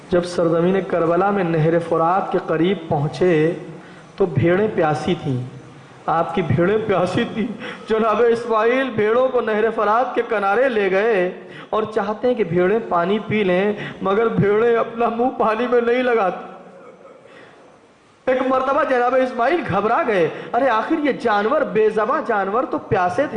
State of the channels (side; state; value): both; identical; correlation 1.00